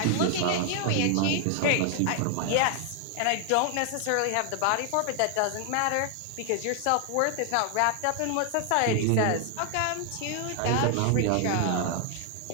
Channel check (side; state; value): both; different; correlation 0.00